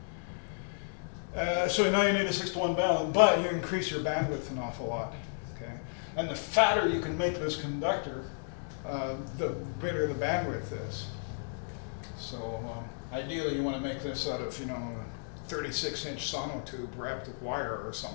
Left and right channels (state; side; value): silent; right; digital silence